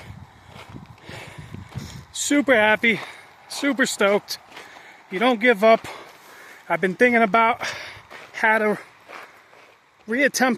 Super happy, super stoked. You don't give up. I've been thinking about how to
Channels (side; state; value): both; identical; correlation 1.00